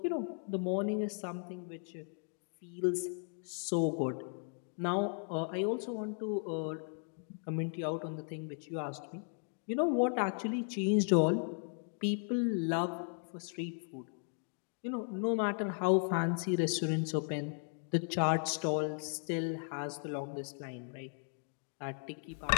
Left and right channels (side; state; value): right; silent; 54 dB below the other